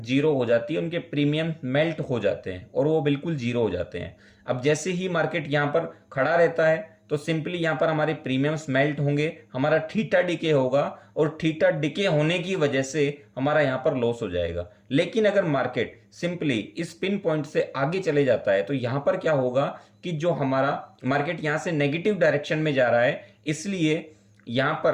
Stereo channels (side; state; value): both; identical; correlation 1.00